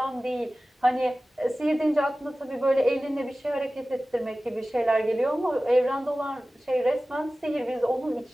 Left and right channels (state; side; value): normal; both; correlation 0.96